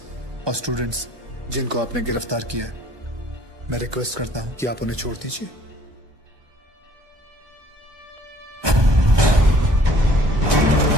और स्टूडेंट्स जिनको आपने गिरफ्तार किया है, मैं रिक्वेस्ट करता हूं कि आप उन्हें छोड़ दीजिए।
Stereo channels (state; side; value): late; left; 1.2 ms